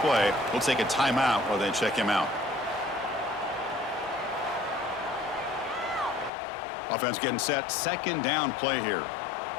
We'll take a timeout while they check him out. Offense getting set. 2nd down play here.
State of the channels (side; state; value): right; drops out; at 6.3 s